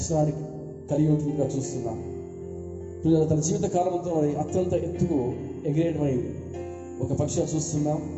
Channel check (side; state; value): both; identical; correlation 1.00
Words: కలిగి ఉంటుందిగా చూస్తున్నాం. పిల్లలు తన జీవిత కాలంతో మరి అత్యంత ఎత్తుకు ఎగిరేటువంటి ఒక పక్షిగా చూస్తున్నాం.